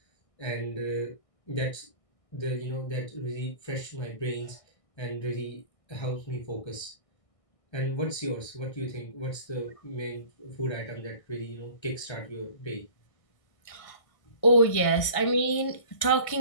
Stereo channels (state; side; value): late; right; 1.6 ms